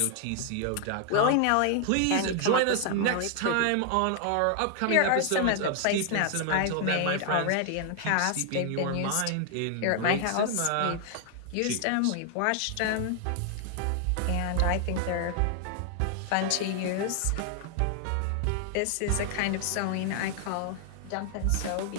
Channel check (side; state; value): both; different; correlation 0.00